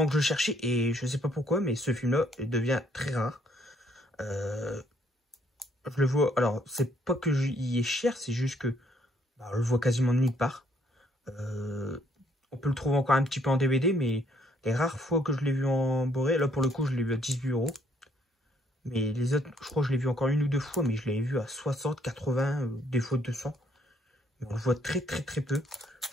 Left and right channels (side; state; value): both; normal; correlation 0.67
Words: que je cherchais et je sais pas pourquoi, mais ce film-là devient très rare. Euh, je le vois. Alors, c'est pas que il est cher, c'est juste que bah, on le voit quasiment de nulle part. Euh, on peut le trouver encore un petit peu en DVD, mais les rares fois que je l'ai vu en Boré, là pour le coup, je l'ai vu à 18 €. Mais les autres, je crois que je l'ai vu encore une ou deux fois, mais je l'avais vu à 60, 80, des fois 200. Mais on le voit très très très peu.